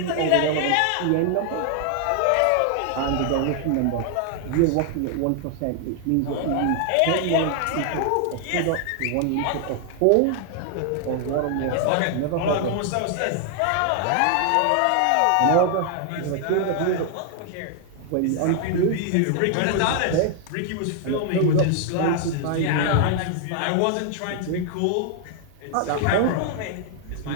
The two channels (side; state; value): both; different; correlation 0.00